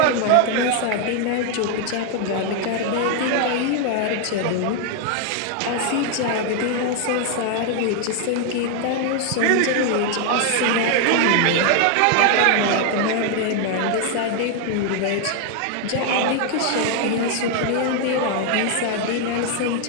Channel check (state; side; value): different; both; correlation 0.01